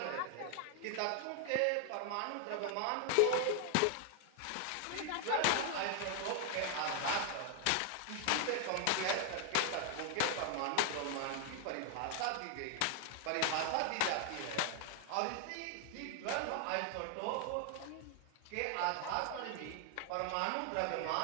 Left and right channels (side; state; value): both; different; correlation 0.00